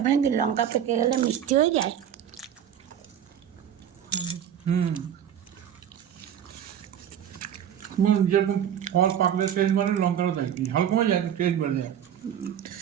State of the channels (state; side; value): quieter; left; 9.5 dB